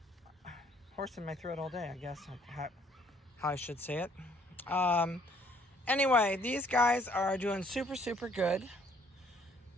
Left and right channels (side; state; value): both; normal; correlation 0.62